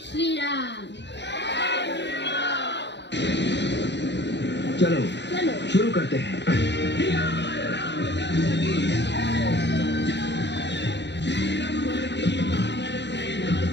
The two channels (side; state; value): right; late; 0.51 ms